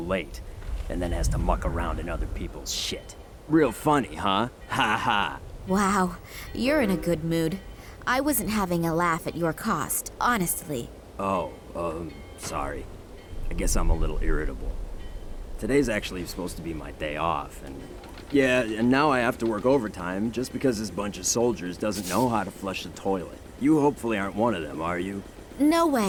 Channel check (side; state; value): both; identical; correlation 1.00